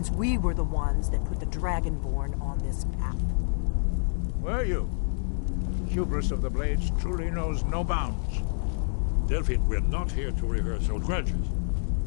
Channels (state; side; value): silent; right; digital silence